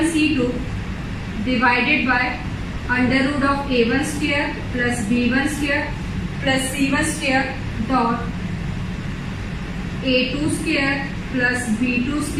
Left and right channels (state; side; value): identical; both; correlation 1.00